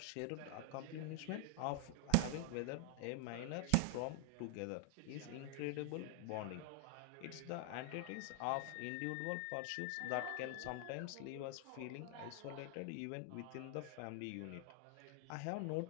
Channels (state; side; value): different; both; correlation 0.00